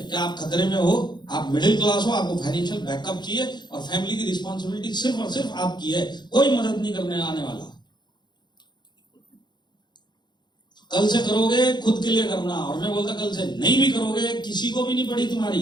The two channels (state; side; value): late; right; 0.21 ms